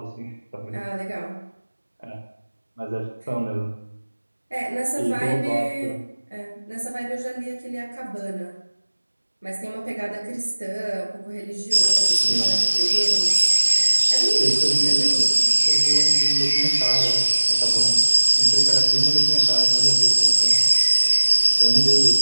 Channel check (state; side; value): inverted; both; correlation -1.00